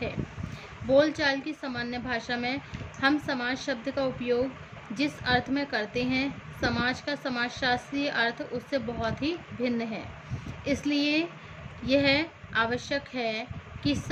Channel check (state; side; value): identical; both; correlation 1.00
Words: है. बोलचाल की सामान्य भाषा में हम समाज शब्द का उपयोग जिस अर्थ में करते हैं, समाज का समाजशास्त्रीय अर्थ उससे बहुत ही भिन्न है. इसलिए यह आवश्यक है कि